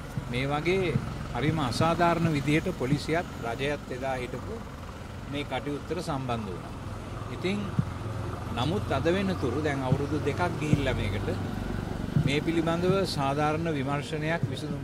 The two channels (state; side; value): identical; both; correlation 1.00